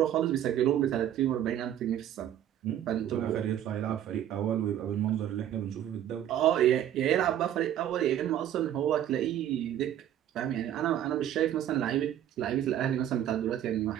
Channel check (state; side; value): quieter; left; 11.1 dB